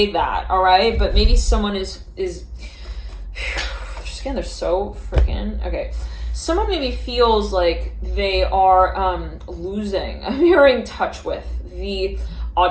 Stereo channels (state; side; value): identical; both; correlation 1.00